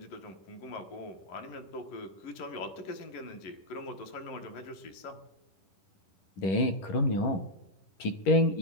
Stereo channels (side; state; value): right; late; 11 ms